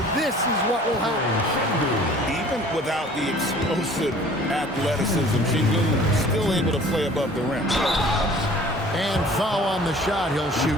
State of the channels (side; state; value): both; normal; correlation 0.50